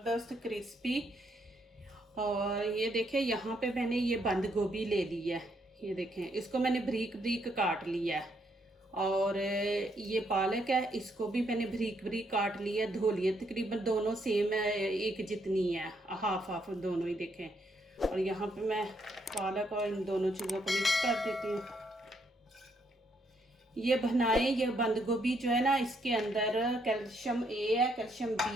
क्रिस्पी। और ये देखें, यहाँ पे मैंने ये बंद गोभी ले ली है। ये देखें, इसको मैंने बारीक बारीक काट लिया है। और ये पालक है, इसको भी मैंने बारीक बारीक काट लिया, धो लिया। तकरीबन दोनों सेम है, एक जितनी है, हाफ हाफ दोनों ही देखें। और यहाँ पे मैं पालक और इन दोनों चीज़ों को मिक्स कर देती हूँ। ये बनाएं, ये बंद गोभी जो है ना, इसके अंदर कैल्शियम ए है, कैल्शियम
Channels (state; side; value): normal; both; correlation 0.74